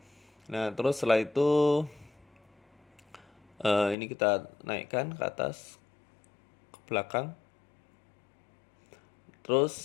nah terus setelah itu ini kita naikkan ke atas, ke belakang.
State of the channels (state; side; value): drops out; right; at 4.0 s